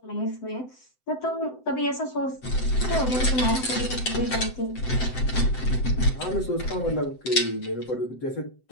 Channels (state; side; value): late; right; 7.8 ms